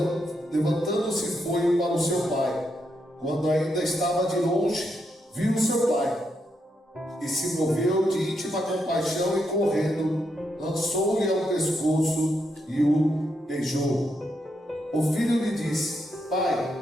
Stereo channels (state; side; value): normal; both; correlation 0.81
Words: levantando-se, foi para o seu pai. Quando ainda estava de longe, viu o seu pai e se moveu de íntima compaixão e, correndo, lançou-lhe ao pescoço e o beijou. O filho lhe disse: Pai,